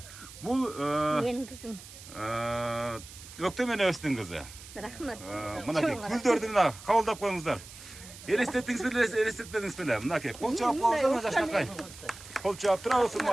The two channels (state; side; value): noise; right; hiss, 16 dB below the sound